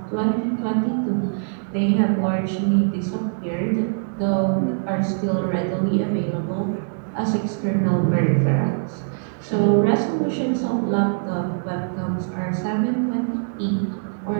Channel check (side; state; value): left; silent; digital silence